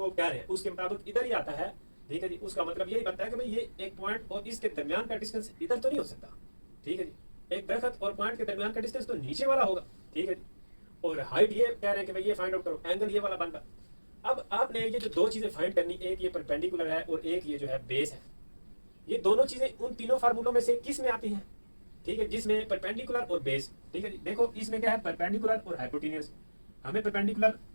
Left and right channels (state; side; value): inverted; both; correlation -1.00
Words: कह रहे हैं उसके मुताबिक इधर ही आता है। ठीक है जी, उसका मतलब यही बनता है कि भाई ये एक पॉइंट और इसके दरमियान का डिस्टेंस इधर तो नहीं हो सकता। ठीक है जी, एक दरख्त और पॉइंट के दरमियान का डिस्टेंस तो नीचे वाला होगा। ठीक है जी, और हाइट ये कह रहे हैं कि भाई ये फाइंड आउट करो, एंगल ये वाला बन रहा। अब आपने ये जो दो चीजें फाइंड करनी, एक ये परपेंडिकुलर है और एक ये जो है बेस है, ये दोनों चीजें उन तीनों फार्मूलों में से किस में आती हैं? ठीक है, जिसमें परपेंडिकुलर और बेस। ठीक है जी, देखो इसमें क्या है, परपेंडिकुलर और हाइपोटेन्यूस। हमें परपेंडिकुलर